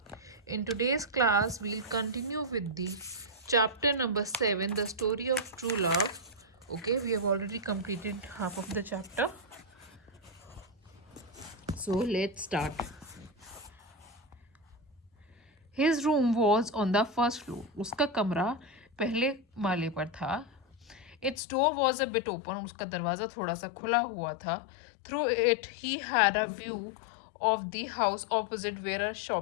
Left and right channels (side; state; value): right; drops out; at 21.4 s